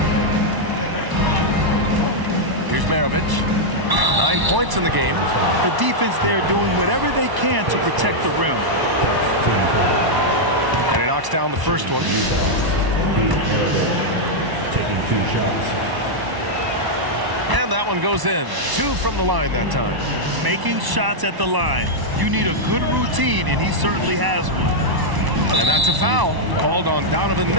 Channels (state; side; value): late; left; 1.0 ms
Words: Here's Maravich. 9 points in the game. The defense there doing whatever they can to protect the rim. And he knocks down the first one. Taking 2 shots. And that one goes in. 2 from the line that time. Making shots at the line. You need a good routine, and he certainly has one. And that's a foul called on Donovan